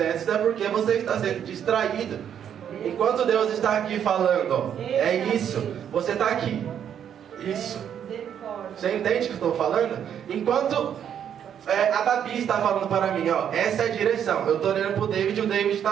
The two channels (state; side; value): quieter; left; 9.0 dB